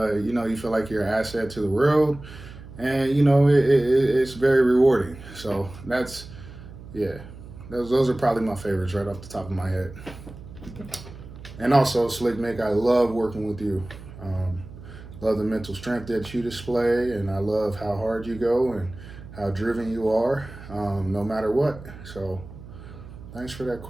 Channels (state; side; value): noise; right; hum, 16 dB below the sound